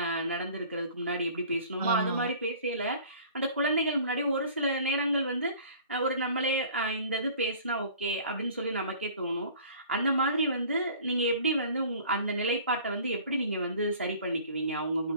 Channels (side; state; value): both; inverted; correlation -0.48